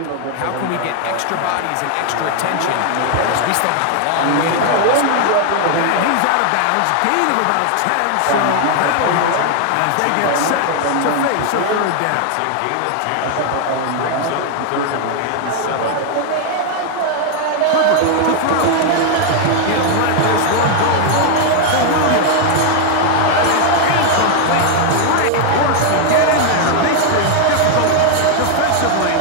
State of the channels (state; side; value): different; both; correlation 0.00